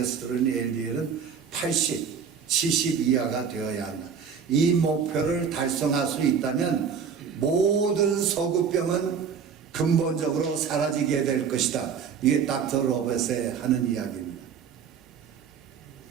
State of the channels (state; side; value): quieter; left; 6.8 dB